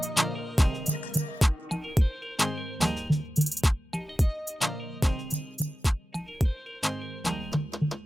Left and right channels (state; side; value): normal; both; correlation 0.93